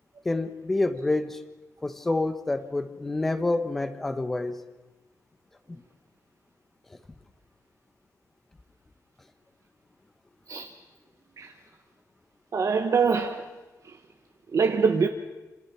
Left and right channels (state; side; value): normal; both; correlation 0.82